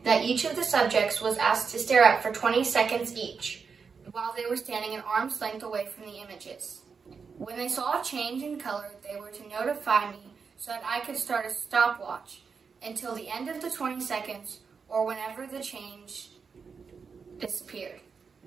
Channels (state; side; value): quieter; left; 5.6 dB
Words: that each of the subjects was asked to stare at for 20 seconds each, while they were standing an arm's length away from the images. When they saw a change in color, they were to notify me so that I could start a stopwatch until the end of the 20 seconds or whenever the change disappeared.